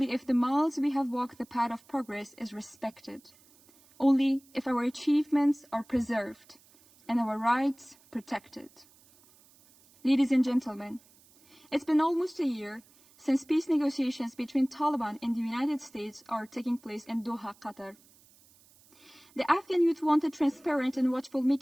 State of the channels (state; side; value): noise; right; hiss, 28 dB below the sound